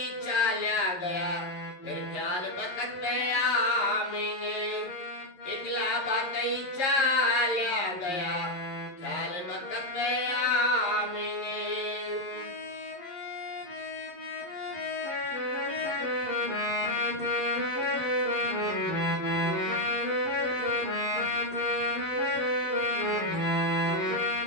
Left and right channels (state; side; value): late; right; 11 ms